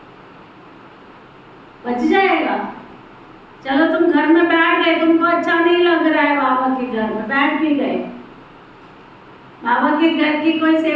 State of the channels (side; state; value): both; identical; correlation 1.00